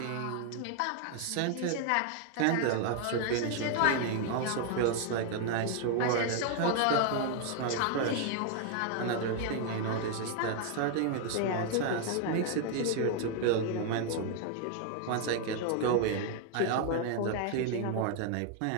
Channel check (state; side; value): different; both; correlation 0.00